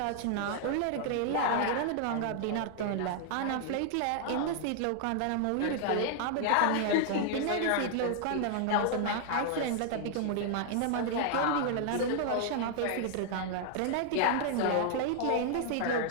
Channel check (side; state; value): both; different; correlation 0.00